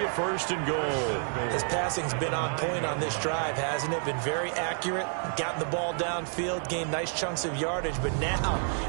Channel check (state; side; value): silent; left; 58 dB below the other